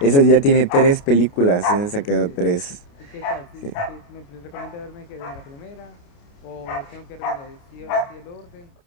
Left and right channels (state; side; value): late; right; 29 ms